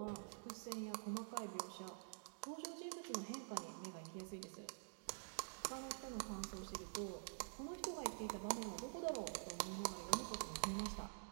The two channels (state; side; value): silent; left; digital silence